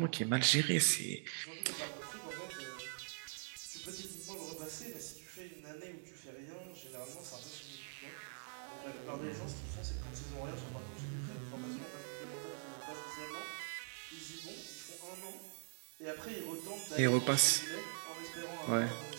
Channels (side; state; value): left; silent; digital silence